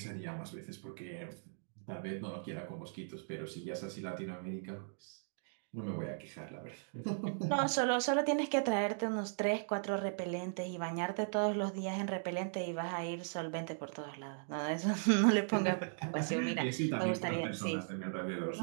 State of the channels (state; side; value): silent; left; digital silence